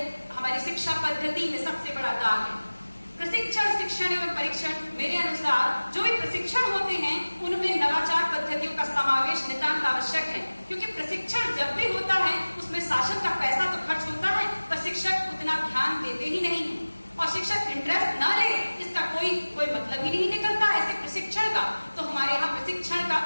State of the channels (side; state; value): both; inverted; correlation -1.00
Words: हमारी शिक्षा पद्धति में सबसे बड़ा दाग है। प्रशिक्षण, शिक्षण एवं परीक्षण, मेरे अनुसार जो भी प्रशिक्षण होते हैं उनमें नवाचार पद्धतियों का समावेश नितांत आवश्यक है, क्योंकि प्रशिक्षण जब भी होता है उसमें शासन का पैसा तो खर्च होता है, पर शिक्षक उतना ध्यान देते ही नहीं है। और शिक्षक इंटरेस्ट न ले इसका कोई मतलब ही नहीं निकलता ऐसे प्रशिक्षण का। तो हमारे यहाँ प्रशिक्षण का